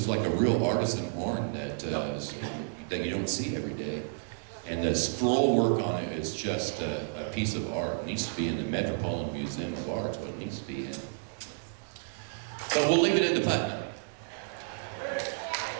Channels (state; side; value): silent; left; digital silence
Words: like a real artisan horn that you don't see every day. And the scroll work on it is just a piece of art. It needs to be in the Metropolitan Museum of Art, is what it needs to be in. But we'll leave it in the Putnam.